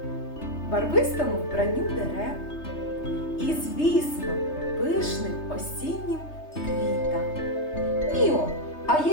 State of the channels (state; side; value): late; right; 3.3 ms